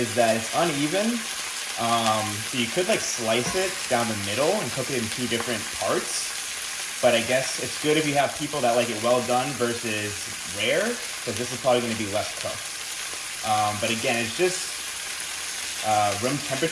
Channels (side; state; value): both; identical; correlation 1.00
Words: that it's uneven. So you could like slice it down the middle and cook it in two different parts. But I guess it's good if you have people that like it well done versus rare, because this is probably going to be less cooked. But again, it's just room